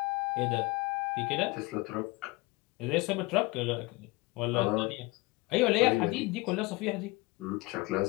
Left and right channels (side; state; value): right; quieter; 23.6 dB